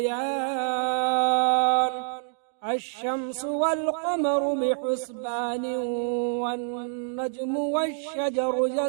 الشمس والقمر بحسبان، والنجم والشجر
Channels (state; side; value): silent; left; 60 dB below the other